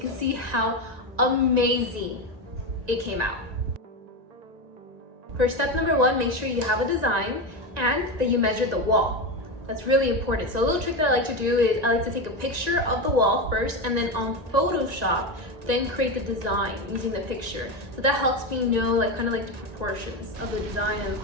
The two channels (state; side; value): late; left; 1.9 ms